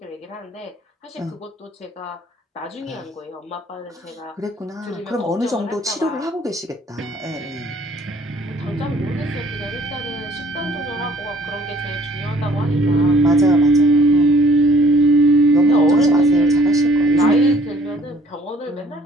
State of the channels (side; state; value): both; normal; correlation 0.58